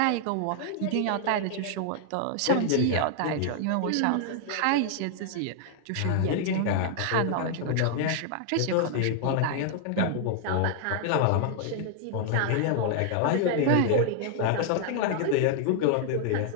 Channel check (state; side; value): different; both; correlation 0.00